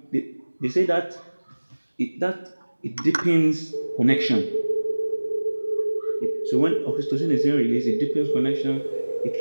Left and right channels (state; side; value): inverted; both; correlation -1.00